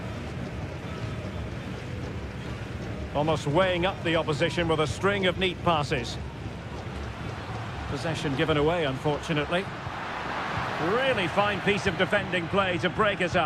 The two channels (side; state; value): left; noise; hum, 30 dB below the sound